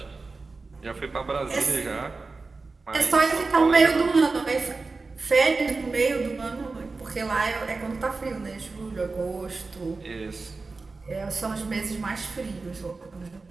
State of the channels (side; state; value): left; quieter; 3.9 dB